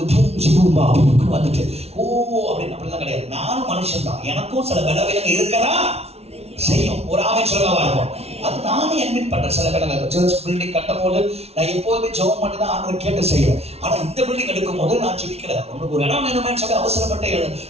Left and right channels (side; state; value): left; late; 0.30 ms